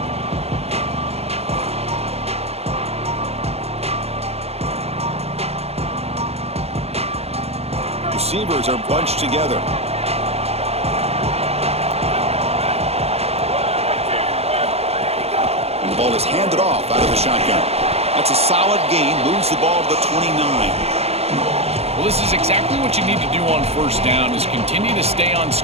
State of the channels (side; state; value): left; late; 0.30 ms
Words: Receivers are bunched together. And the ball is handed off out of the shotgun. That's a solid gain. Moves the ball to the 29. Well, this is exactly what you need to do on first down is continue to stay on